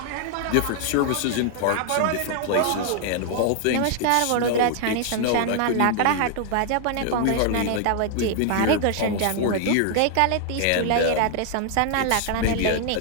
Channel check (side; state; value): both; different; correlation 0.00